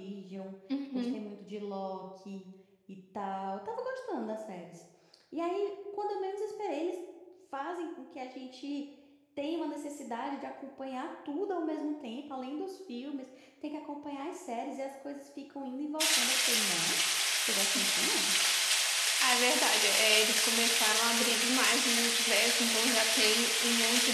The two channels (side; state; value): both; identical; correlation 1.00